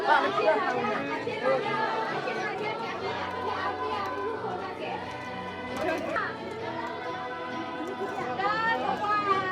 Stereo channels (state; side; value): identical; both; correlation 1.00